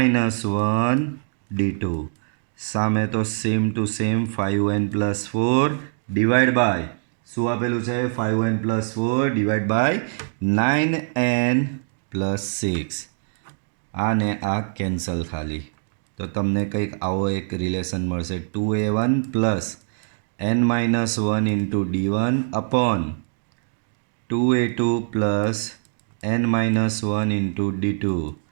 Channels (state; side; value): silent; left; digital silence